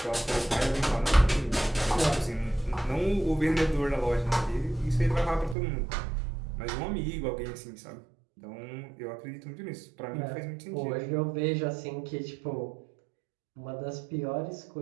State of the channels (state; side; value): drops out; left; at 5.6 s